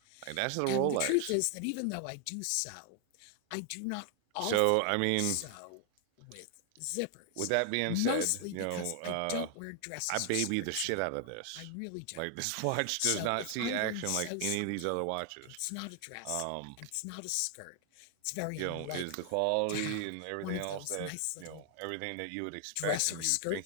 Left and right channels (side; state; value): both; different; correlation 0.00